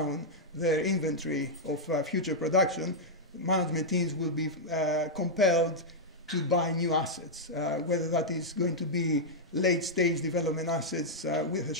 their inventory of future production, management teams will be compelled to buy new assets, whether that is going to be late-stage development assets with a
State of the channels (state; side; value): normal; both; correlation -0.05